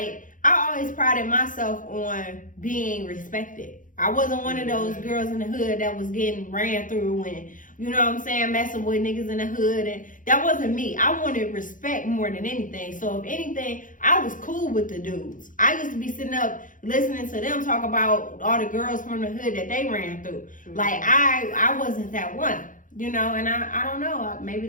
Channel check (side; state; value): right; late; 0.38 ms